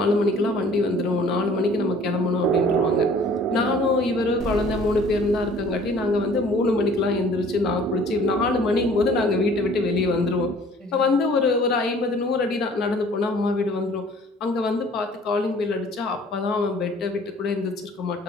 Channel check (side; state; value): both; normal; correlation 0.52